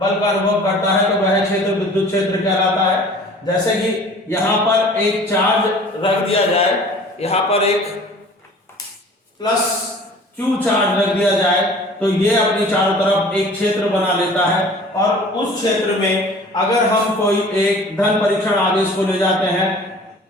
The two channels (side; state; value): both; normal; correlation 0.46